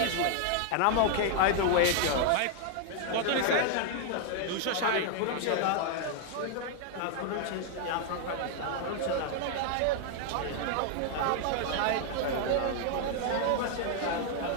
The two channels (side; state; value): both; different; correlation 0.00